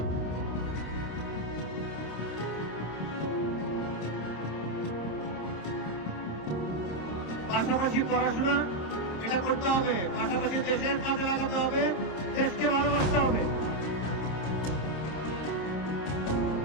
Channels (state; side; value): late; right; 26 ms